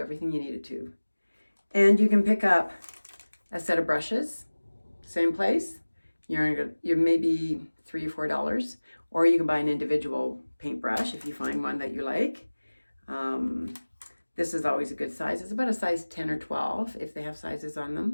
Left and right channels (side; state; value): both; inverted; correlation -1.00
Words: you need it to. And you can pick up a set of brushes, same place. You're maybe $3 or $4, or you can buy an individual paintbrush if you find one that you like. This is always a good size. It's about a size 10 or 12 if they have sizes on